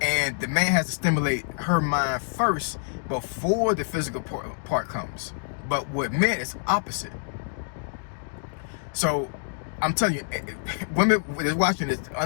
and the man has to stimulate her mind first before the physical part comes. But with men, it's opposite. So I'm telling you, women that's watching this,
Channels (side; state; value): right; silent; digital silence